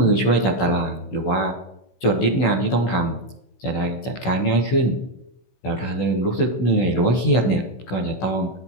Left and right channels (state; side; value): late; right; 16 ms